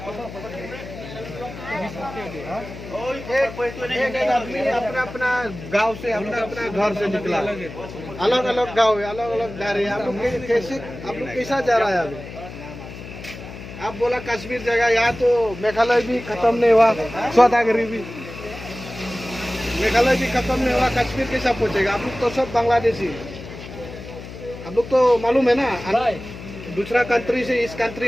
आदमी अपना अपना गांव से अपना घर से निकला, अलग अलग गांव है, अलग अलग घर है। आप लोग कैसा जा रहा है अभी? आप बोला कश्मीर जगह, यहाँ तो मेघालय भी खत्म नहीं हुआ, सौदागरी भी मेघालय भी खत्म नहीं हुआ, कश्मीर कैसा पहुंचेगा? आप लोग तो सब बांग्लादेशी, आप लोग तो मालूम है ना, दूसरा कंट्री से इस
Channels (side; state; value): left; noise; hum, 12 dB below the sound